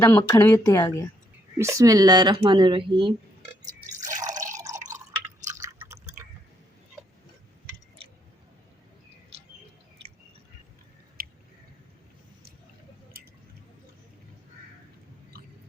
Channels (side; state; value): both; normal; correlation 0.73